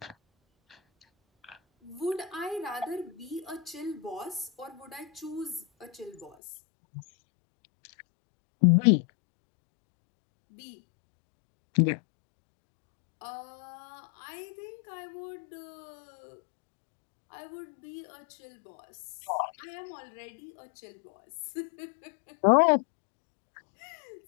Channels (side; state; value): right; drops out; at 6.4 s